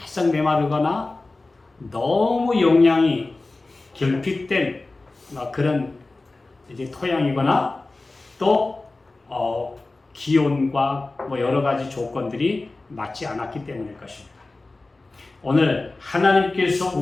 메마르거나 너무 영양이 결핍된 그런 이제 토양이거나 또 기온과 여러 가지 조건들이 맞지 않았기 때문일 것입니다. 오늘 하나님께서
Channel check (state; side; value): quieter; right; 3.3 dB